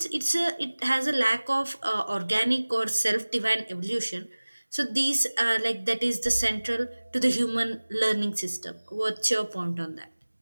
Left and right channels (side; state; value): both; inverted; correlation -1.00